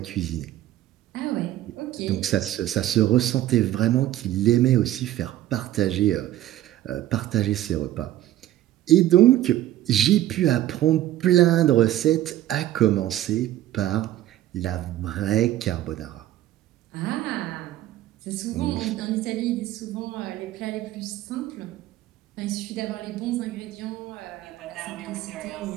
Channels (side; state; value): left; quieter; 13.7 dB